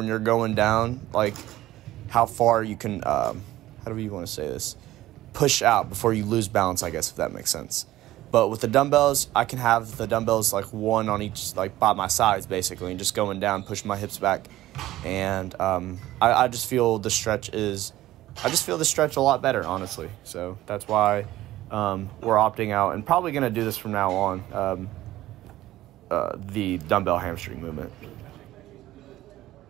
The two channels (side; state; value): left; quieter; 15.4 dB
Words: you're going down, like how far you can. How do you want to say this? Push out before you lose balance, I guess, if that makes sense. But with the dumbbells, I can have the dumbbells like one on each, like by my sides, basically, and just going down, pushing my hips back, and I just feel the stretch a lot better, honestly. So that's why we're opting out and probably gonna do this from now on. The dumbbell hamstring movement.